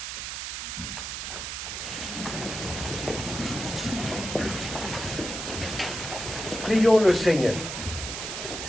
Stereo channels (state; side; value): noise; right; hiss, 5 dB below the sound